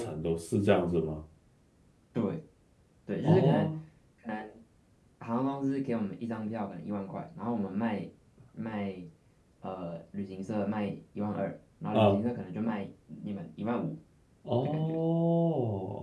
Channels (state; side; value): identical; both; correlation 1.00